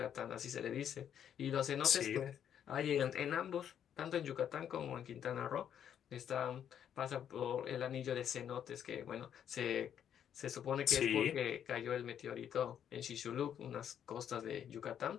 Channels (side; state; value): right; quieter; 9.2 dB